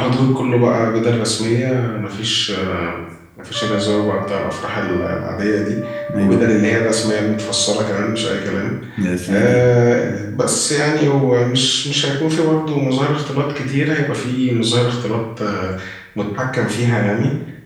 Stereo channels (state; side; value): identical; both; correlation 1.00